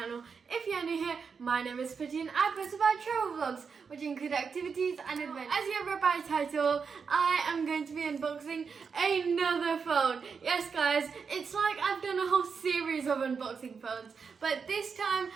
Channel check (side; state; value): left; quieter; 5.7 dB